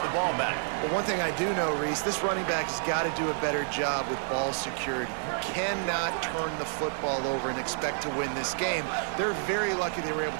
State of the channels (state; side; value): silent; left; digital silence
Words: the ball back. Well, one thing I do know, Reese, this running back has got to do a better job with ball security. You cannot turn the football over and expect to win this game. They're very lucky they were